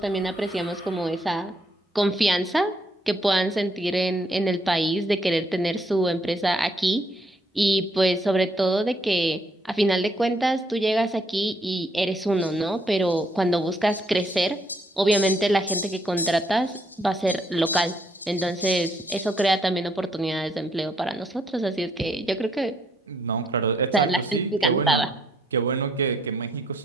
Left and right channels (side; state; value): both; normal; correlation 0.71